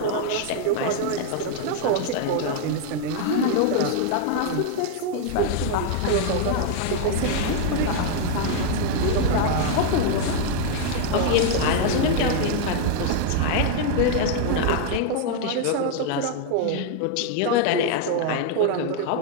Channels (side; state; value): both; different; correlation 0.00